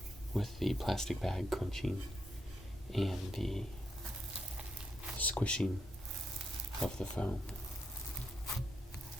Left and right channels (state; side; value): normal; both; correlation 0.80